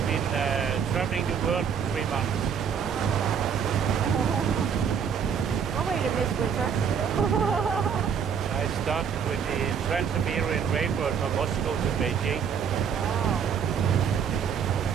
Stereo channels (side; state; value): left; quieter; 7.2 dB